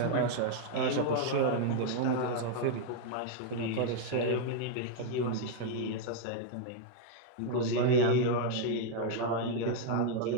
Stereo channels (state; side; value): different; both; correlation 0.00